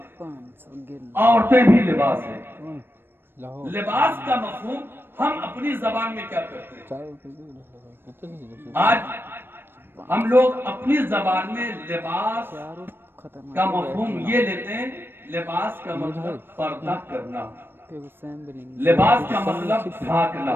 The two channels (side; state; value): left; late; 0.10 ms